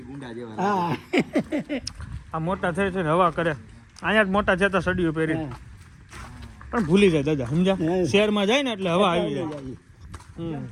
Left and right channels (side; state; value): both; identical; correlation 1.00